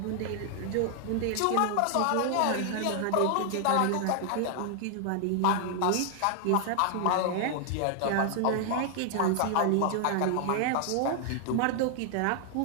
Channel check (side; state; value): both; different; correlation 0.00